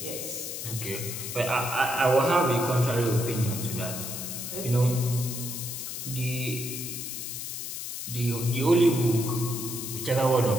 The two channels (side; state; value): left; noise; hiss, 6 dB below the sound